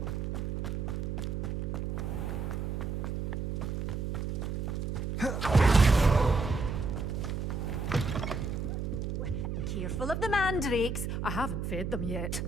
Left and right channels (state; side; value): noise; right; hum, 2 dB below the sound